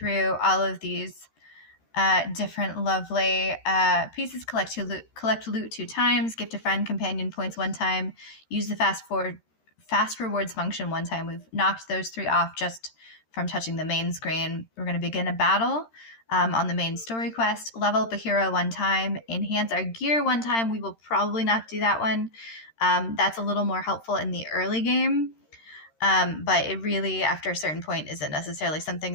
all of these different lovely pieces. Collect loot 2 times, gift a friend companion points 1 time, use the fast rewards function 1 time. We've knocked those 3 off just from touching the main screen. We're going to begin a battle on the main story quest, level up a hero 1 time, enhance our gear 1 time. We will probably not do that one. That's a little more helpful in the early game, but it really, after a certain point, isn't necessarily something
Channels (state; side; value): late; right; 13 ms